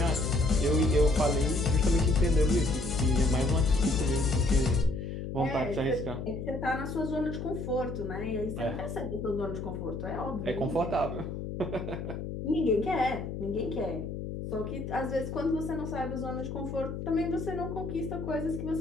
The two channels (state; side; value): noise; left; hum, 6 dB below the sound